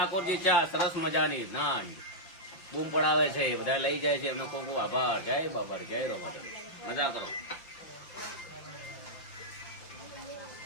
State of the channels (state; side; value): late; right; 5.8 ms